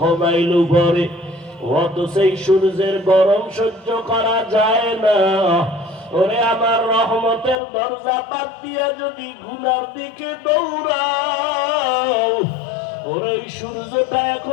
মাইল উপরে। অত সেই সূর্যের গরম সহ্য করা যায় না। ওরে আমার রহমতের দরজা বাদ দিয়া যদি গুনার দিকে দৌড়াও, ওরে সূর্যটা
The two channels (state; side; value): drops out; right; at 7.6 s